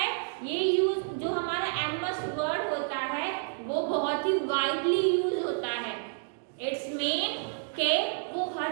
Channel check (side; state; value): left; silent; digital silence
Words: ये यूज जो हमारा MS वर्ड होता है वो बहुत ही वाइडली यूज होता है। इट्स मीन के वो